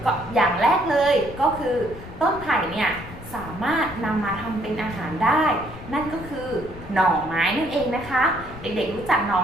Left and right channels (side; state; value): left; noise; rumble, 14 dB below the sound